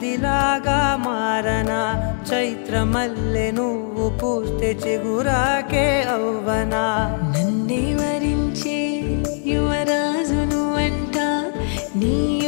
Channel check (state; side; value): silent; right; 59 dB below the other